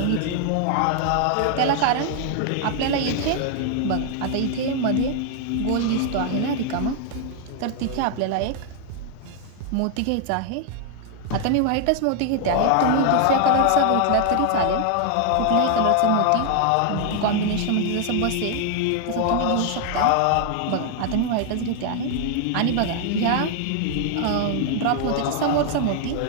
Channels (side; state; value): both; different; correlation 0.00